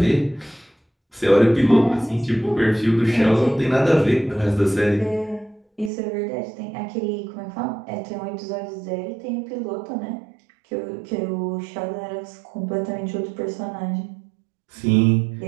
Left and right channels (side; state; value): left; drops out; at 5.9 s